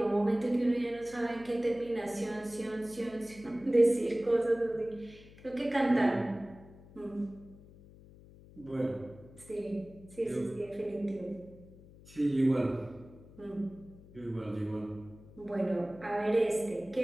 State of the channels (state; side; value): noise; left; hum, 21 dB below the sound